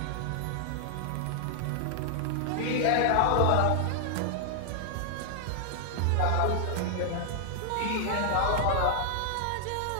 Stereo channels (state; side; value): different; both; correlation -0.01